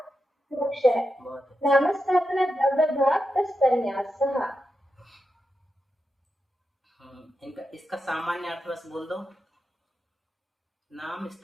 मोक्ष है। नामस्थापना द्रव्य भाग तन्यास, इनका इसका सामान्य अर्थ बस बोल दो। नाम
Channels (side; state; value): both; normal; correlation 0.87